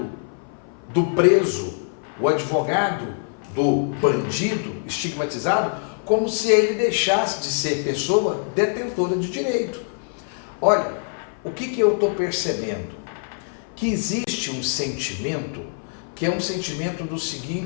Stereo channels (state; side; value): silent; right; 57 dB below the other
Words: do preso, o advogado do bandido estigmatizado, como se ele deixasse de ser pessoa detentora de direito. Olha, o que eu estou percebendo? Que existe um sentimento que é um sentimento do